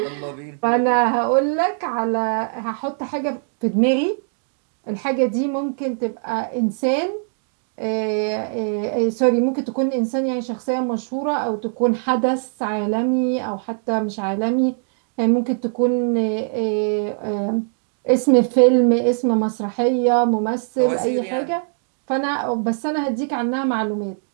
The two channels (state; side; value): silent; left; digital silence